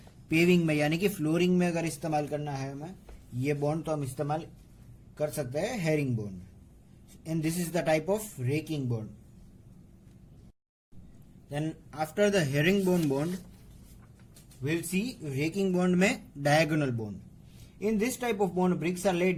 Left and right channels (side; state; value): both; identical; correlation 1.00